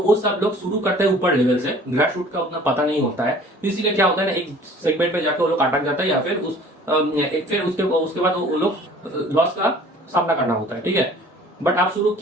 सब लोग शुरू करते हैं ऊपर लेवल से, ग्रास रूट का उतना पता नहीं होता है, तो इसीलिए क्या होता है ना, एक सेगमेंट पे जाकर वो लोग अटक जाता है, या फिर फिर उसके बाद वो लोग लॉस का सामना करना होता है, ठीक है। बट आप शुरू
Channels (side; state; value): both; normal; correlation 0.50